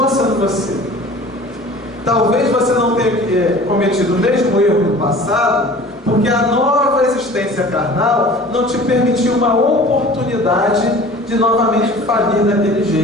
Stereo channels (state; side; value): normal; both; correlation 0.44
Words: sendo você. Talvez você não tenha cometido o mesmo erro no passado, porque a nova existência carnal não te permitiu uma oportunidade de novamente falir daquele